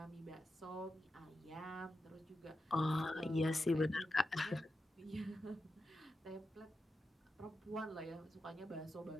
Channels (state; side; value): normal; both; correlation 0.89